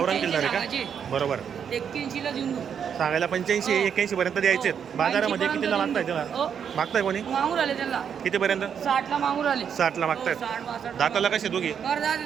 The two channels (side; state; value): left; quieter; 7.7 dB